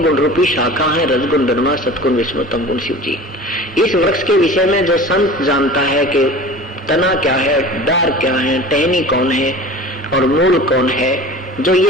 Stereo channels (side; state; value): both; normal; correlation 0.38